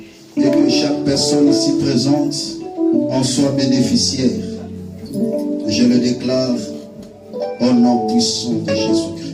et que chaque personne ici présente en soit bénéficiaire. Je le déclare au nom puissant de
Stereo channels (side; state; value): both; identical; correlation 1.00